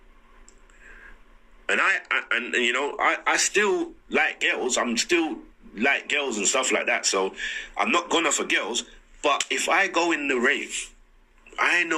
and I still like girls, I'm still like girls and stuff like that, so I'm not gonna for girls, but if I go in the rave, I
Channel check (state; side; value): identical; both; correlation 1.00